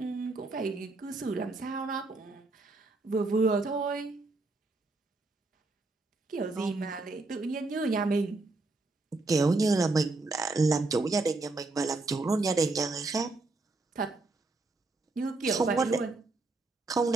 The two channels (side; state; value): left; quieter; 3.3 dB